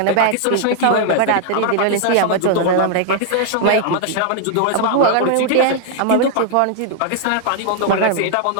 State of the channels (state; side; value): different; both; correlation -0.01